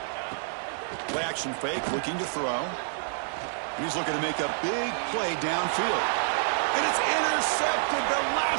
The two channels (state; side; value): silent; left; digital silence